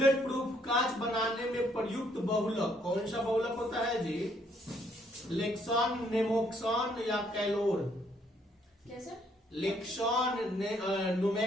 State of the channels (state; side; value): normal; both; correlation 0.68